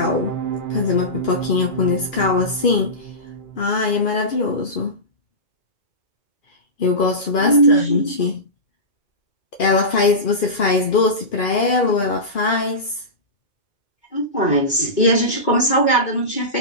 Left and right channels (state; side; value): late; right; 2.2 ms